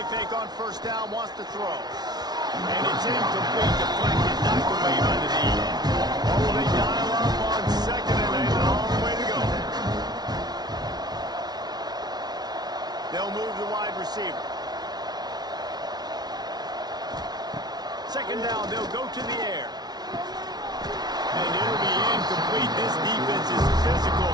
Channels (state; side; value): late; left; 0.19 ms